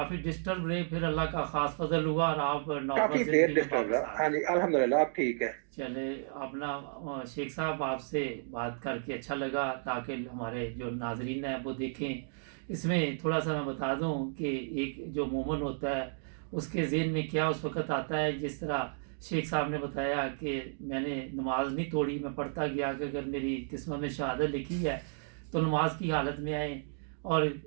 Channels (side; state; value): left; silent; digital silence